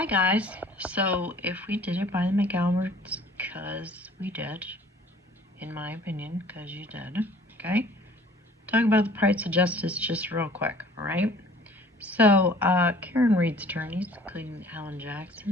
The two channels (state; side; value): normal; both; correlation 0.52